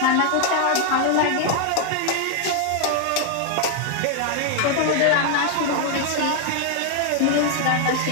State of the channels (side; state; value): both; different; correlation 0.00